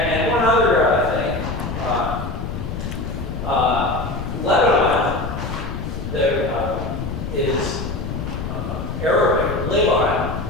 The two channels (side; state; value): left; noise; rumble, 5 dB below the sound